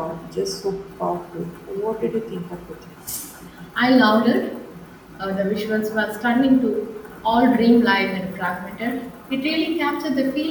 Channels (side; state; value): both; identical; correlation 1.00